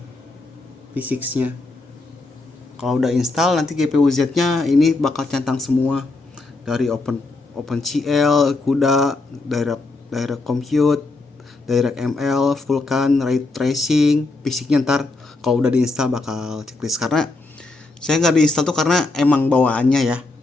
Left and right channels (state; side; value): quieter; right; 3.3 dB